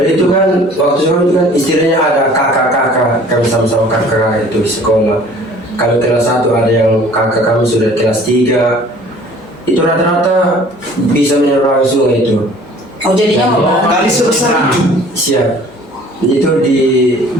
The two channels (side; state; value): both; normal; correlation 0.51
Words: itu kan waktu sekolah itu kan istilahnya ada kakak-kakak, kami sama-sama kakak itu di sekolah. Kalau kelas 1 ada yang kakak kami sudah kelas 3, itu rata-rata bisa menyeberangi sungai itu. Oh, jadinya Oh, kali sebesar itu. Siap. Itu di